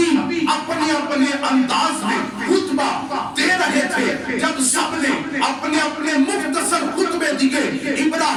اپنے اپنے انداز میں خطبہ دے رہے تھے۔ جب سب نے اپنے اپنے مختصر خطبے دیے،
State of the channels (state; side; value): identical; both; correlation 1.00